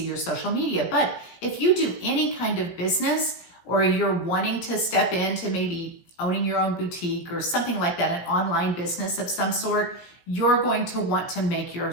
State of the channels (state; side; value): late; right; 17 ms